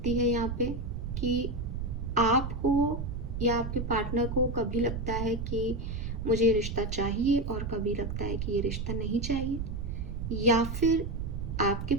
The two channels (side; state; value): right; noise; rumble, 4 dB below the sound